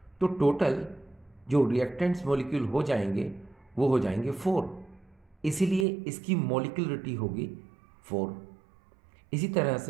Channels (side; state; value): left; drops out; at 5.9 s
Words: तो टोटल जो रिएक्टेंट्स मॉलिक्यूल हो जाएंगे वो हो जाएंगे 4, इसीलिए इसकी मॉलिक्यूलरिटी होगी 4। इसी तरह